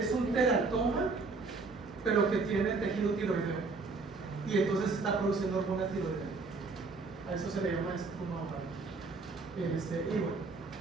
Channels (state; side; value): quieter; left; 4.0 dB